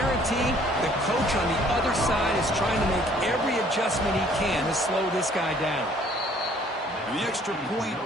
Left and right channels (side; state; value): both; normal; correlation 0.59